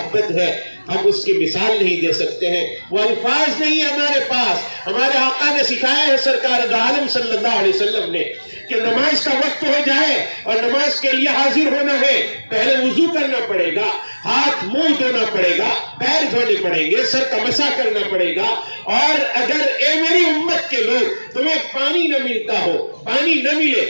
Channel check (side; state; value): both; inverted; correlation -1.00